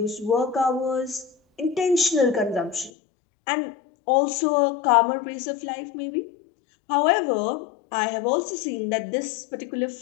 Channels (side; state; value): right; drops out; at 2.9 s